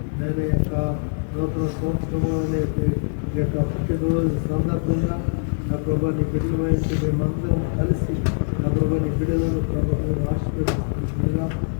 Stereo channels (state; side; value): silent; right; digital silence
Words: నేను యొక్క నూతన సంవత్సరంలో ఈ యొక్క పుట్టినరోజు సందర్భంగా నా ప్రభాని బిడ్డల వయసు మేమందరం కలిసి నా ప్రభాని బిడ్డలను ప్రభావం ఆశీర్వదిస్తున్నా